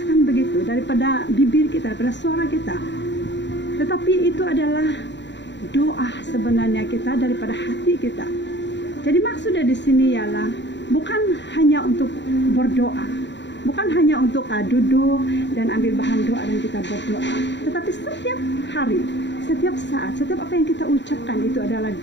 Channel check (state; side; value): late; right; 0.52 ms